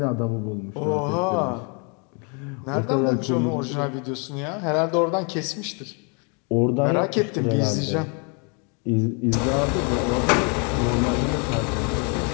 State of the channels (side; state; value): right; quieter; 35.9 dB